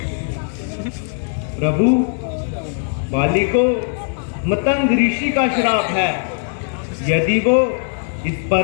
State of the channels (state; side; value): silent; right; 59 dB below the other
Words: प्रभु, बाली को मतंग ऋषि का श्राप है। यदि वो इस